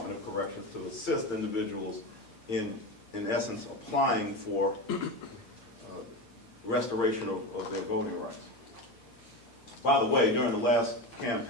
of Corrections to assist individuals in essence, applying for restoration of their voting rights. By the way, during the last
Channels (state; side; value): late; right; 8.7 ms